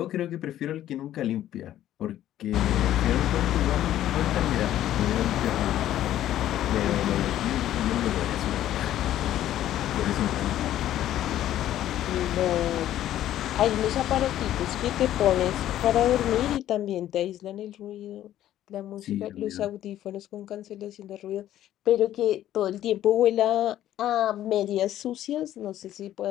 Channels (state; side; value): quieter; right; 12.5 dB